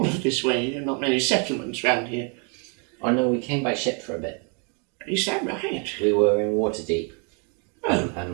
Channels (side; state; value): left; quieter; 37.6 dB